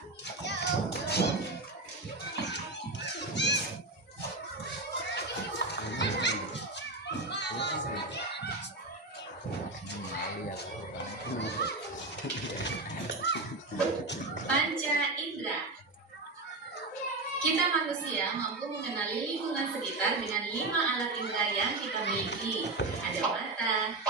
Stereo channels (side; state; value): left; quieter; 3.2 dB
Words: Panca indera. Kita manusia mampu mengenali lingkungan sekitar dengan 5 alat indera yang kita miliki. Ada mata,